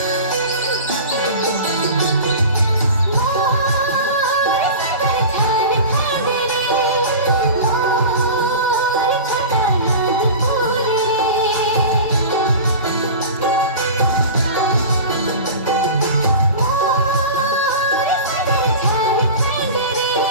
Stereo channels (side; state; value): both; inverted; correlation -0.33